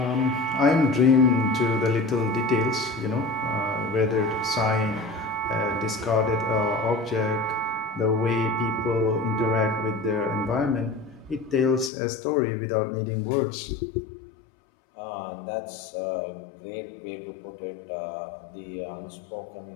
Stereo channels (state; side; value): drops out; right; at 11.9 s